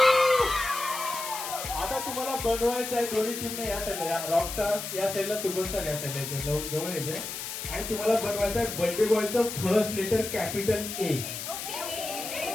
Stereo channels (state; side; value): noise; left; hiss, 6 dB below the sound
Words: आता तुम्हाला बनवायचं आहे दोन्ही टीमने या साईडला, रॉकस्टार या साईडला, सुपरस्टार या साईडला जवळ यायचंय. आणि तुम्हाला बनवायचं आहे बर्थडे बॉयचं first letter capital A.